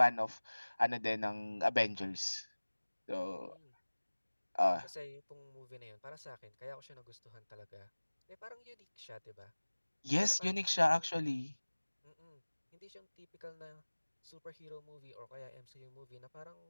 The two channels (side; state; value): both; inverted; correlation -1.00